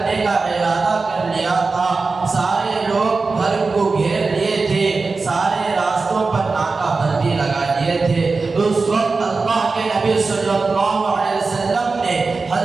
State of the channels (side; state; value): left; quieter; 4.1 dB